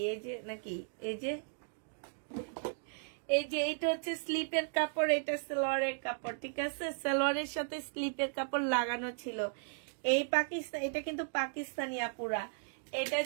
এই যে নাকি এই যে এইটা হচ্ছে স্লিপের কাপড়, এটা সেলোয়ারের কাপড়, ঠিক আছে? সেলোয়ারের সাথে স্লিপের কাপড় লাগানো ছিল। এই পাকিস্তান, এটা কিন্তু পাকিস্তানি আপুরা। এটা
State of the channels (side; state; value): left; silent; digital silence